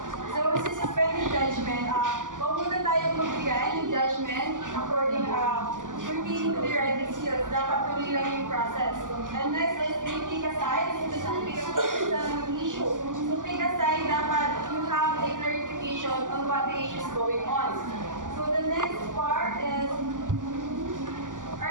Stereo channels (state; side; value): late; left; 0.88 ms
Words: So, sa suspending judgment, huwag muna tayong magbigay ng judgment according pertaining to the writing skills. Dapat tuloy lang yung process. And next is take aside. Ito sa pick aside ng issue. So, pick aside, dapat you have a clarification on what the issue is going on. So, the next part is